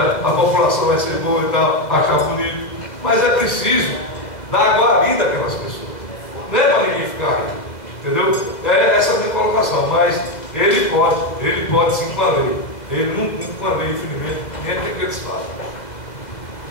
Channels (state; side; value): late; right; 2.1 ms